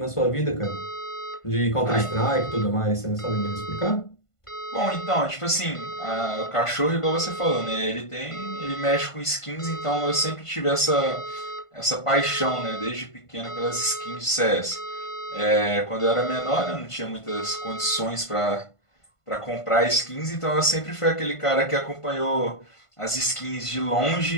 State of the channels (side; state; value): right; late; 1.5 ms